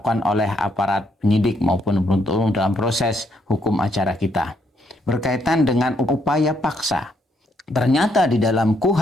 oleh aparat penyidik maupun penuntut dalam proses hukum acara kita. Berkaitan dengan upaya paksa. Ternyata di dalam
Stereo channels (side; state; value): both; normal; correlation 0.73